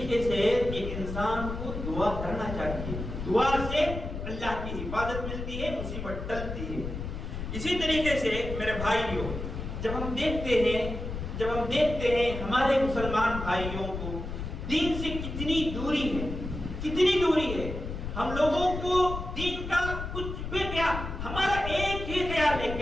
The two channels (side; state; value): left; noise; rumble, 6 dB below the sound